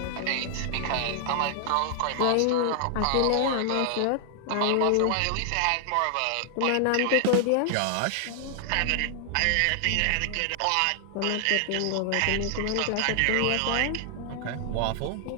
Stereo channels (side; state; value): both; different; correlation 0.00